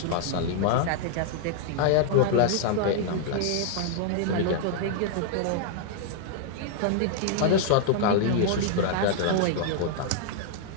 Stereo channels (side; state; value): both; different; correlation -0.01